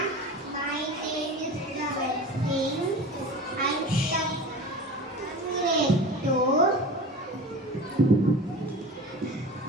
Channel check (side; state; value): both; normal; correlation 0.34